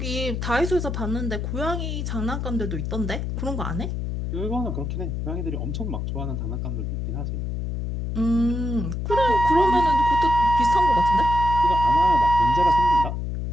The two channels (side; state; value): left; noise; hum, 3 dB below the sound